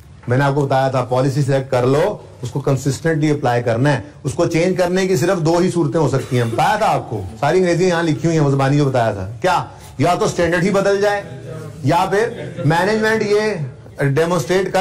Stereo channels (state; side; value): identical; both; correlation 1.00